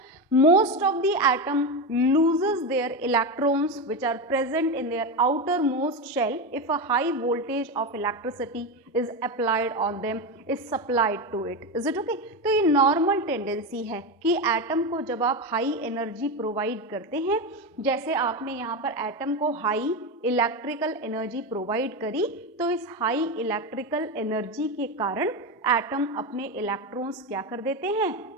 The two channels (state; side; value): normal; both; correlation 0.16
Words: most of the atom loses their electrons which are present in their outermost shell if a high voltage of electricity is applied on them, is supplied to it. Is it okay? तो ये normal tendency है कि atom को जब आप high energy provide करते हैं, जैसे आपने यहाँ पर एटम को हाई इलेक्ट्रिकल एनर्जी प्रोवाइड करी, तो इस हाई इलेक्ट्रिकल एनर्जी के कारण एटम अपने इलेक्ट्रॉन्स क्या कर देते हैं?